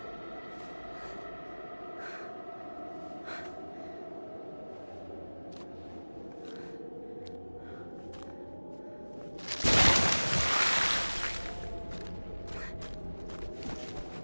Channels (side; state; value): both; inverted; correlation -1.00